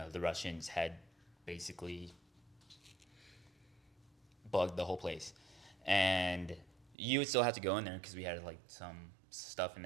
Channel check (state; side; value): drops out; left; at 7.0 s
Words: Russians had basically bugged the whole place, and you would still have to go in there because we had like some stuff in